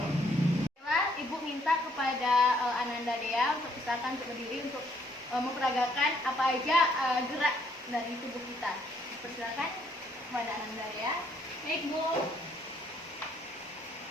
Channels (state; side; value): normal; both; correlation 0.68